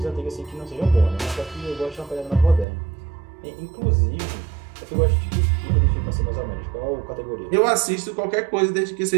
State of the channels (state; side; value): drops out; left; at 2.7 s